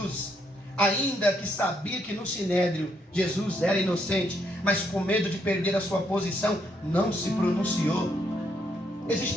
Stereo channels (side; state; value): both; normal; correlation 0.74